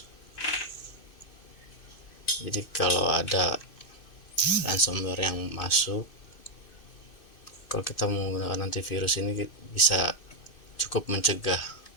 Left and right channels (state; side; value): late; right; 2.6 ms